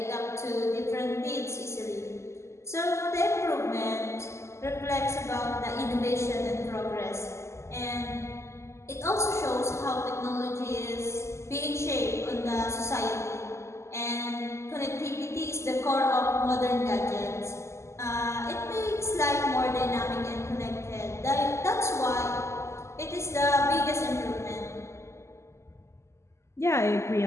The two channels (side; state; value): right; late; 0.13 ms